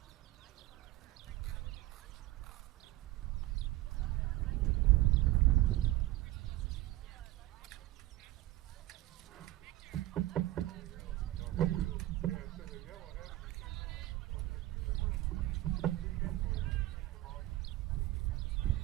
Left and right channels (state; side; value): quieter; left; 16.7 dB